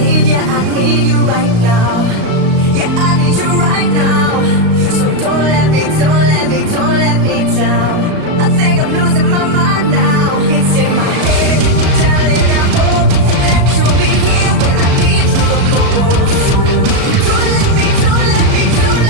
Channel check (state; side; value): late; left; 36 ms